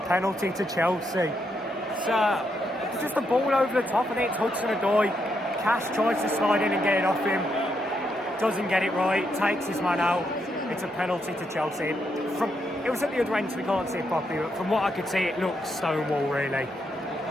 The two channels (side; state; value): both; normal; correlation 0.79